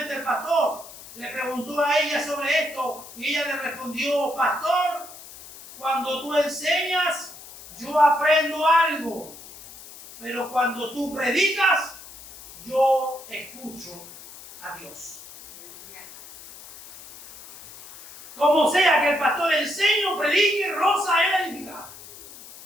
el pastor le preguntó a ella sobre esto, y ella le respondió, pastor, cuando tú enseñas, yo aprendo algo, pero cuando tú predicas, yo escucho a Dios. Como sea que el pastor enseñe o predique, Rosa era edificada.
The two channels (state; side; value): noise; left; hiss, 17 dB below the sound